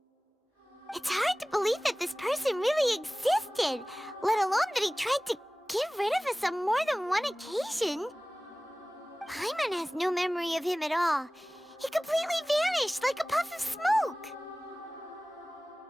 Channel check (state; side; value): normal; both; correlation 0.98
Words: It's hard to believe that this person really existed, let alone that he tried to get rid of us on more than one occasion. Paimon has no memory of him at all. He completely vanished like a puff of smoke.